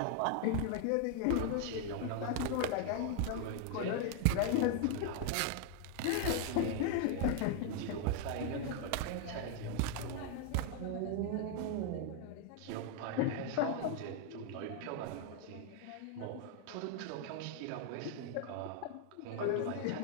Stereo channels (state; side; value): different; both; correlation 0.00